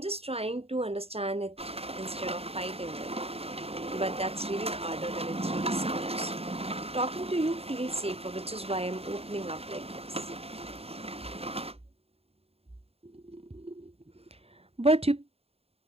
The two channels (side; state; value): left; late; 0.29 ms